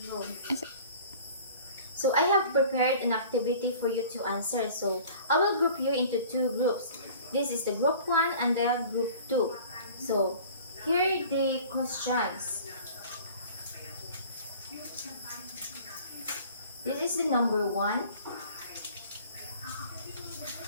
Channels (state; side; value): inverted; both; correlation -0.46